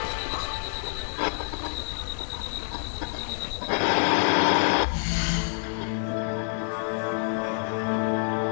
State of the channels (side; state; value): right; silent; digital silence